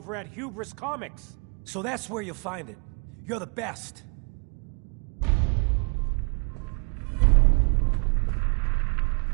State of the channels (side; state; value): left; quieter; 35.7 dB